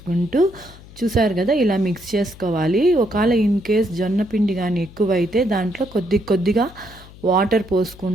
చూసారు కదా ఇలా మిక్స్ చేసుకోవాలి. ఒకవేళ ఇన్ కేస్ జొన్న పిండి కానీ ఎక్కువైతే దాంట్లో కొద్ది కొద్దిగా వాటర్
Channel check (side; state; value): left; noise; hum, 20 dB below the sound